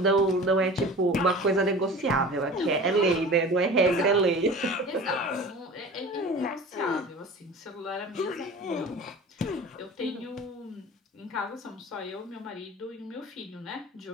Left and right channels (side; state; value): both; normal; correlation 0.39